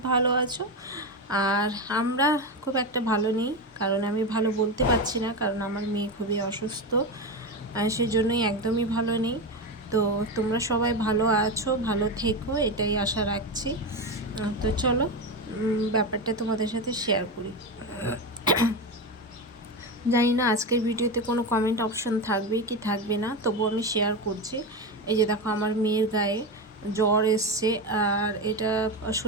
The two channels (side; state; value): both; normal; correlation 0.17